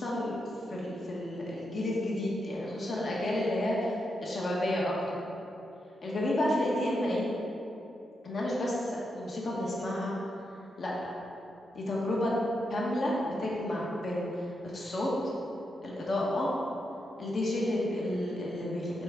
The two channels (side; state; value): both; normal; correlation 0.84